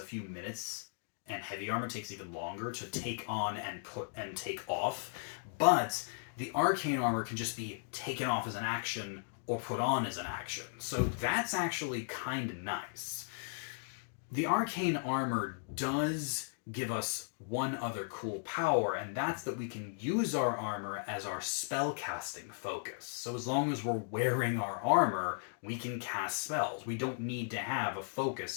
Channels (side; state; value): right; silent; digital silence